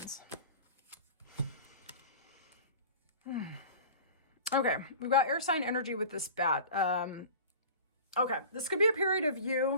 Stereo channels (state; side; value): inverted; both; correlation -0.39